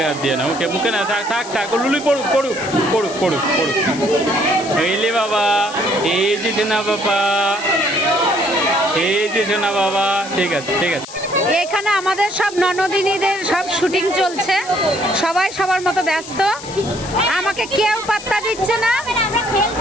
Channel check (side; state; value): left; noise; hiss, 14 dB below the sound